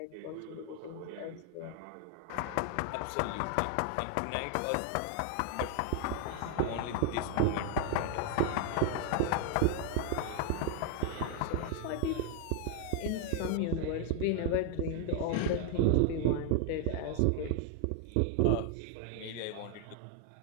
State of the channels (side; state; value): both; different; correlation 0.00